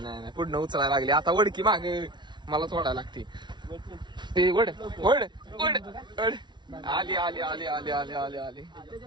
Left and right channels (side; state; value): left; late; 0.22 ms